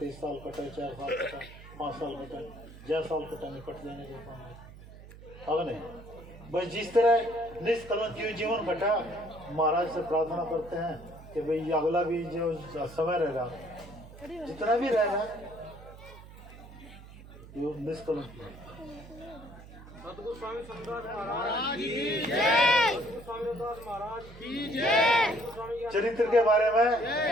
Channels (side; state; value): right; noise; hum, 17 dB below the sound